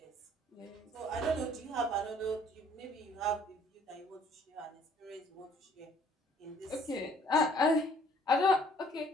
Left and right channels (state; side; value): normal; both; correlation 0.59